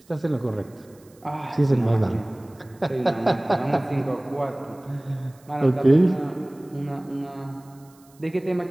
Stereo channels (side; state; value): right; noise; hiss, 29 dB below the sound